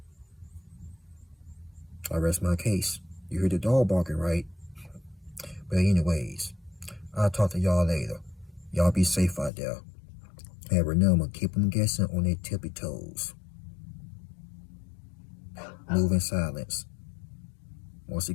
I rest my case. You hear the dog barking, right? But anyways, I'll talk to y'all later. Y'all be safe out there. And remember, keep them guessing on their tippy toes. Move in silence. Once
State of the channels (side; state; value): right; drops out; at 9.5 s